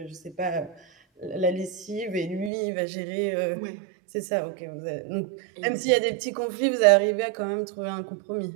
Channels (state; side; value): drops out; left; at 2.5 s